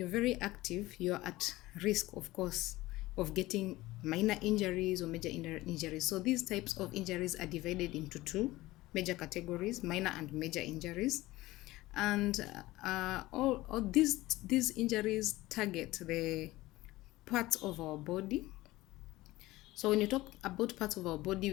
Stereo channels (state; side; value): quieter; right; 18.4 dB